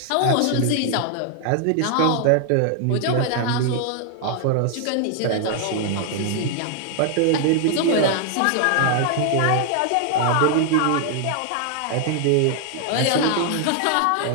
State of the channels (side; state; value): both; different; correlation 0.00